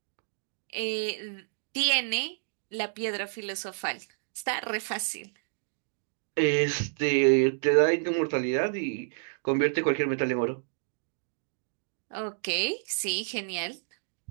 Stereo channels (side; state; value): left; silent; digital silence